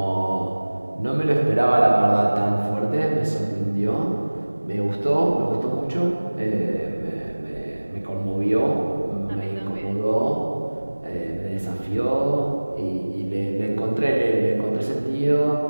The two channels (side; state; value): both; inverted; correlation -1.00